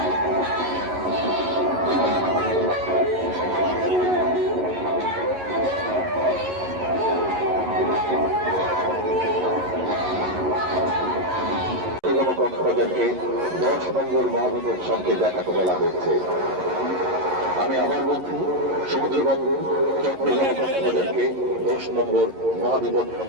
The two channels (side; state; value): left; late; 11 ms